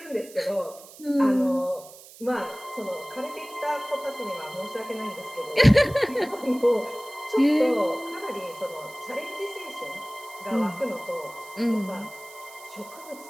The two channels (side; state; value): right; noise; hiss, 19 dB below the sound